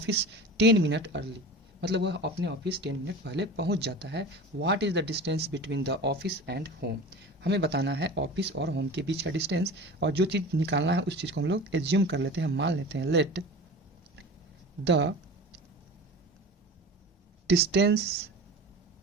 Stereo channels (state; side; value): normal; both; correlation 0.34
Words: 10 minute early, मतलब वह अपने ऑफिस 10 मिनट पहले पहुंच जाता है। What is the distance between the office and home, हमें बताना है ऑफिस और होम के बीच का डिस्टेंस। और जो चीज़ निकालना है उस चीज़ को हम लोग एज्यूम कर लेते हैं, मान लेते हैं। Let the distance